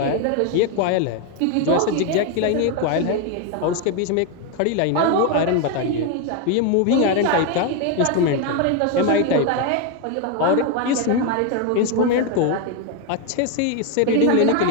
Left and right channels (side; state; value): both; different; correlation 0.01